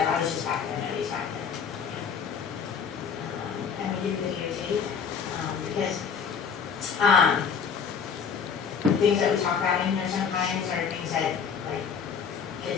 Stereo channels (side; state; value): right; quieter; 6.6 dB